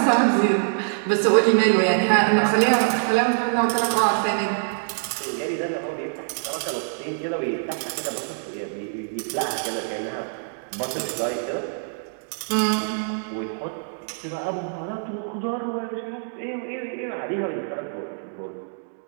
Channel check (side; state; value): left; silent; digital silence